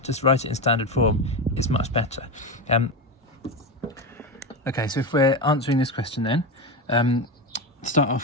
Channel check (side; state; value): both; normal; correlation 0.16